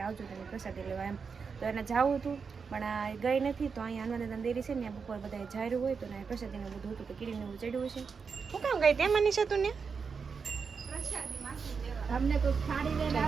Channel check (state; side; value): quieter; left; 5.6 dB